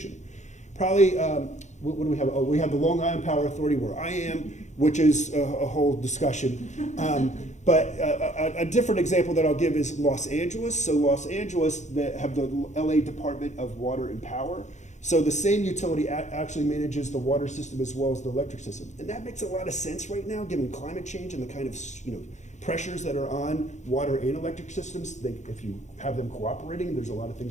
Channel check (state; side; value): late; right; 0.34 ms